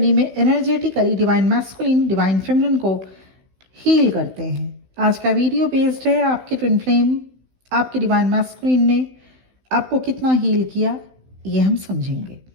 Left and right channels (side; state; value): left; late; 16 ms